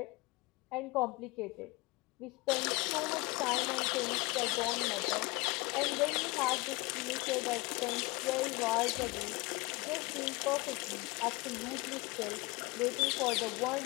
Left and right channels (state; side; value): quieter; right; 23.8 dB